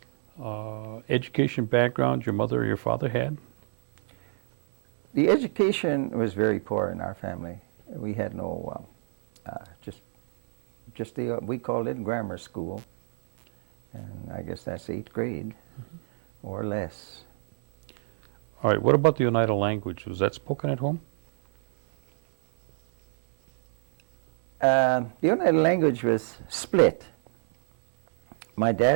education background your mother or your father had? The education was very poor in our family. We had no, we called it grammar school, and I guess that's 8th grade or less. All right, what about the Oneida language? Was that spoken at home? The Oneida language was split. My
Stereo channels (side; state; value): left; silent; 61 dB below the other